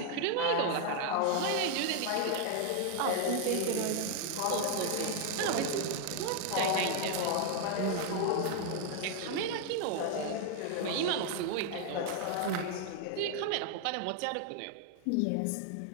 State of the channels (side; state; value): both; different; correlation 0.00